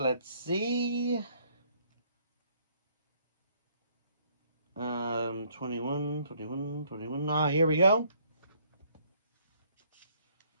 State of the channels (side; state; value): both; inverted; correlation -0.65